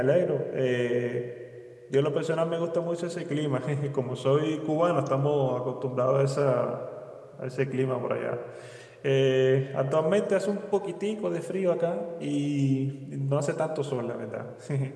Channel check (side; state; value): both; identical; correlation 1.00